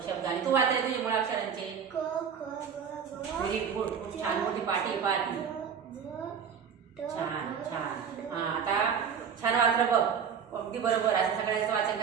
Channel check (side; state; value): left; quieter; 7.1 dB